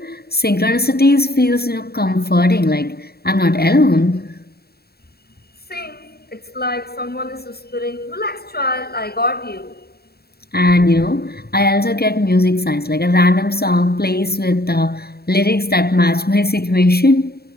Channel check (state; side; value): late; right; 0.46 ms